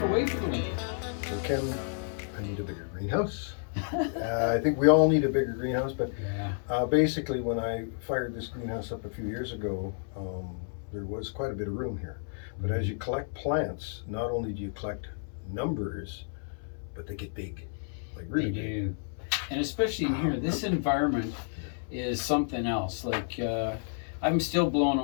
away for the winter. So Ken, I need a bigger greenhouse. I think we all need a bigger greenhouse, but basically when I fired this greenhouse up a few years ago, there was quite a bit of room here. But as you collect plants, not only do you collect numbers, but they get big, like really big. Do. And especially in here, this environment is something else. Like I'm still blown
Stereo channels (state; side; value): silent; right; 57 dB below the other